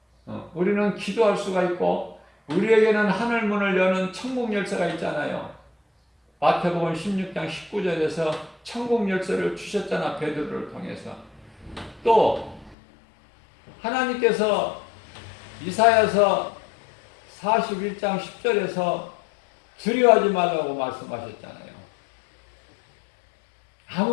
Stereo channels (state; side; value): drops out; right; at 12.8 s